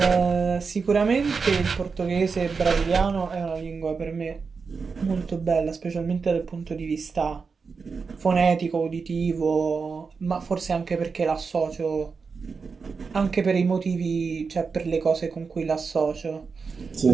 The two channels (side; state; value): left; quieter; 5.1 dB